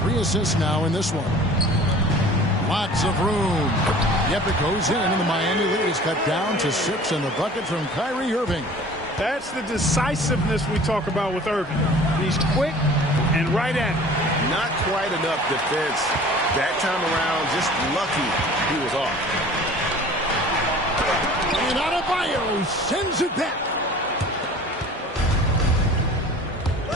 3 assists now in this one. Lots of room. Yep, it goes in, and the Miami lead is cut down to 6, and the bucket from Kyrie Irving. That's the decisiveness we talk about with Irving. He's quick and right at it. Not quite enough defense that time around. Just lucky he was off. And Adebayo sends it back.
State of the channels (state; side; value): normal; both; correlation 0.45